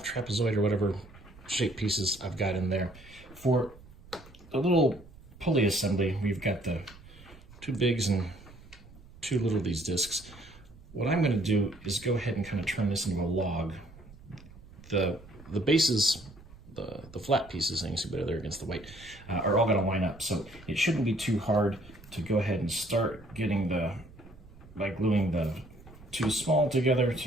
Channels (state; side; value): noise; right; rumble, 21 dB below the sound